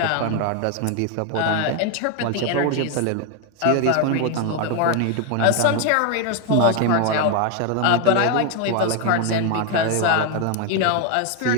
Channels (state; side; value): different; both; correlation 0.01